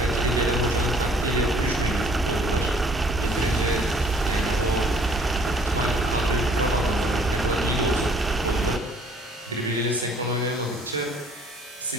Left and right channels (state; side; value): normal; both; correlation 0.58